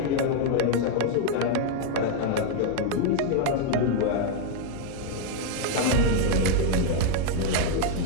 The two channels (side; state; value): both; different; correlation 0.00